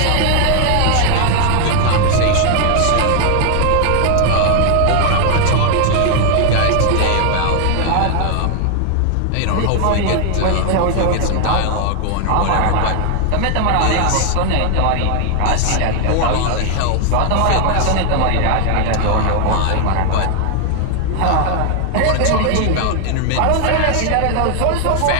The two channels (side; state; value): both; different; correlation 0.00